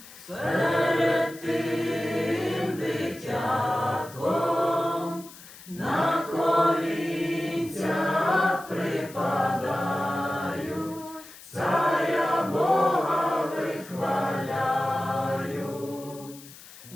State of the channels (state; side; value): noise; left; hiss, 19 dB below the sound